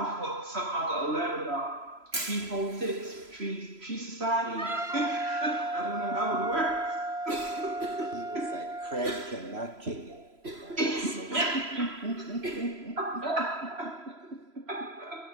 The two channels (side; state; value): left; late; 3.0 ms